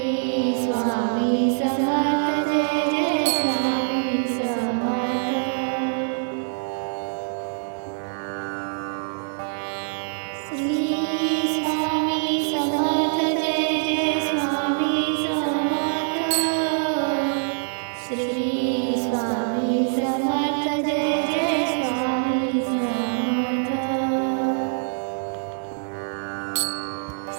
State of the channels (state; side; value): silent; left; digital silence